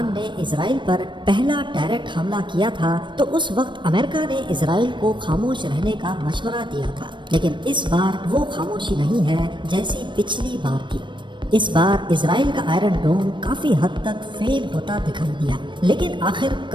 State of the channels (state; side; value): late; left; 0.23 ms